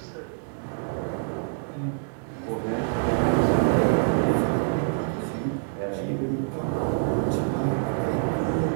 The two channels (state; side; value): silent; left; digital silence